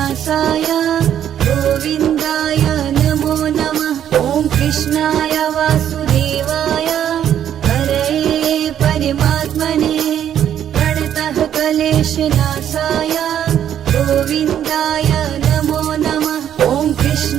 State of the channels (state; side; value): quieter; left; 10.0 dB